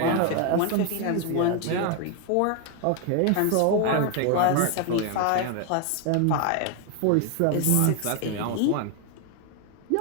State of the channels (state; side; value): different; both; correlation 0.00